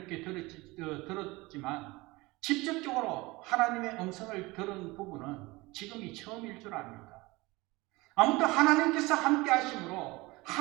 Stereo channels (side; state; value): left; quieter; 22.3 dB